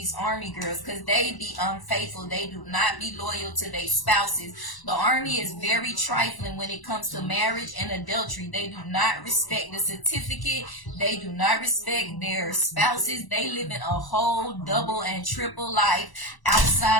army girls, because they be unfaithful. They do not be loyal to their spouses. The army is very trifling when it comes to marriage and adultery. They do not respect the certificate. They do not respect their spouses. They live in a whole double and triple life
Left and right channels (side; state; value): right; late; 1.0 ms